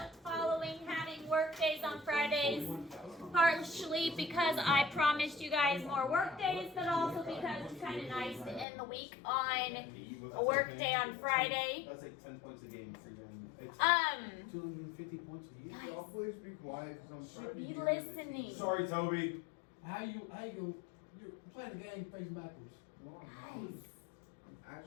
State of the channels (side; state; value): right; drops out; at 8.7 s